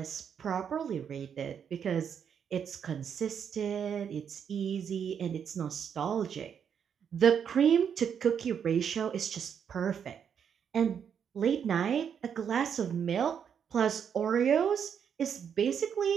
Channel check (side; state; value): left; quieter; 7.8 dB